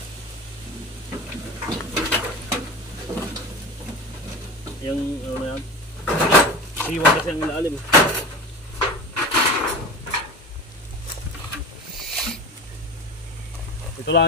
Yung ano na yan? Siwa kasi ang ilalim. Ito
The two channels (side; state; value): both; normal; correlation 0.31